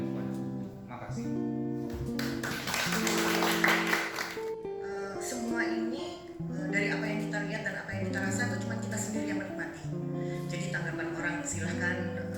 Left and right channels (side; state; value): both; identical; correlation 1.00